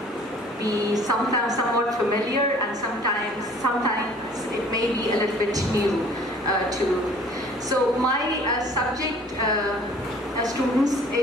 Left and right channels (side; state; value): both; normal; correlation 0.52